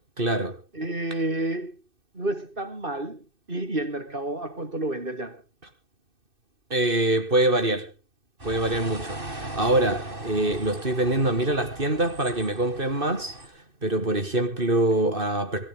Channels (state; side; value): late; left; 2.6 ms